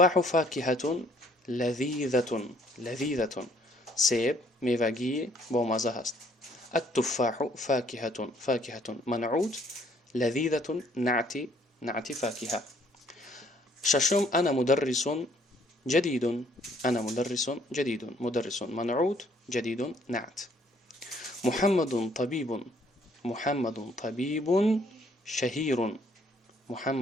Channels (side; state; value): both; normal; correlation 0.64